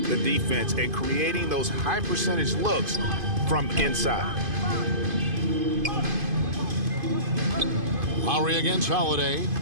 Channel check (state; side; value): late; left; 2.5 ms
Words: the defense and creating those high-percentage looks from inside. Lowry against Holiday.